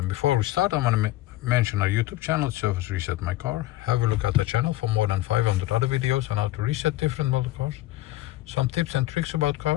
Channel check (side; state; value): right; quieter; 16.5 dB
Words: Before we start, I'm going to mention our YouTube channel, Service Reset My Car. Have a look at the channel for more than 500 other videos on how to reset different model cars. Some tips and tricks about